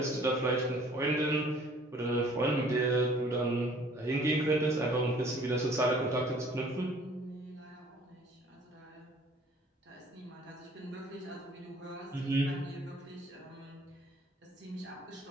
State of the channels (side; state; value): both; normal; correlation 0.55